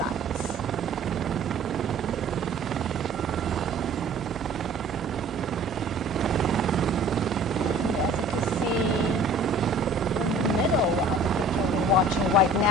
We're watching right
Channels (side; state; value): both; normal; correlation 0.50